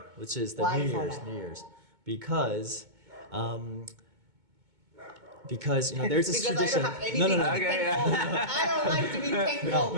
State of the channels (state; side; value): late; left; 2.2 ms